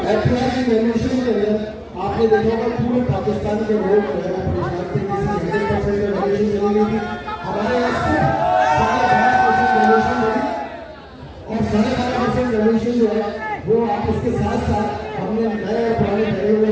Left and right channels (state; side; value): identical; both; correlation 1.00